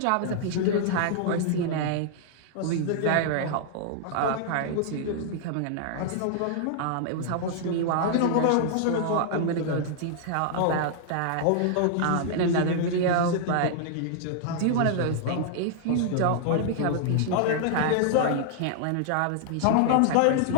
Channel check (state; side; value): different; both; correlation -0.01